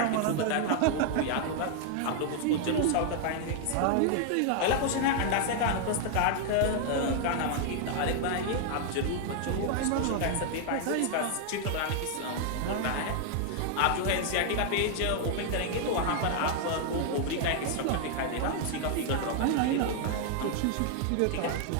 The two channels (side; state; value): both; different; correlation 0.00